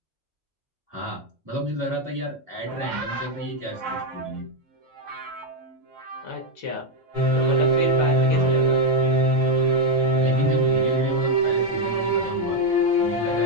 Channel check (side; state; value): both; normal; correlation 0.02